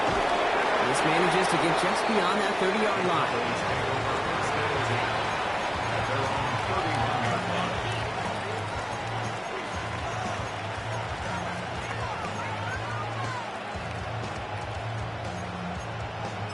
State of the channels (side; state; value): both; identical; correlation 1.00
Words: This manages to get just beyond that 30-yard line.